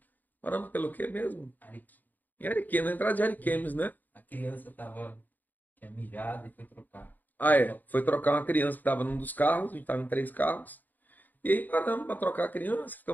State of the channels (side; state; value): right; late; 0.086 ms